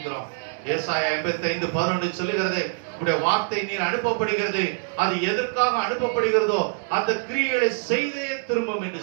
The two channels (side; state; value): left; silent; digital silence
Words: ஏசாயா 55:11 சொல்லுகிறது, உடைய வார்த்தை நீர் அனுப்பப்படுகிறது, அது எதற்காக அனுப்பப்படுகிறதோ அந்த கிரியைகளை செய்தே திரும்பும் என்று